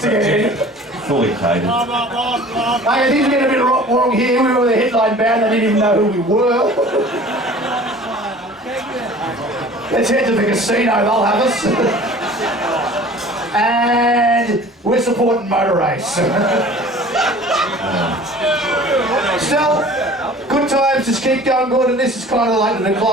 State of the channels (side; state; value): both; normal; correlation 0.45